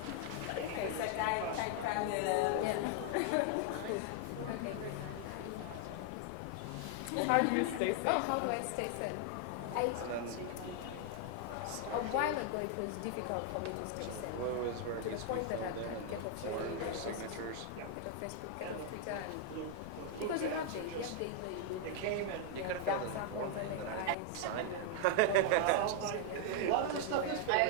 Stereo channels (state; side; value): different; both; correlation 0.00